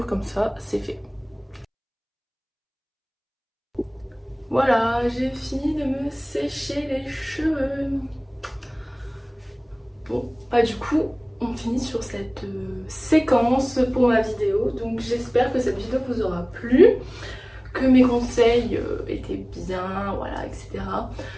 comme ça c'est fait. Voilà, j'ai fini de me sécher les cheveux. Bon, du coup on finit sur cette séquence pour ma vidéo. Donc j'espère que cette vidéo vous aura plu, que mes conseils étaient bien, voilà, etc.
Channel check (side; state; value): both; identical; correlation 1.00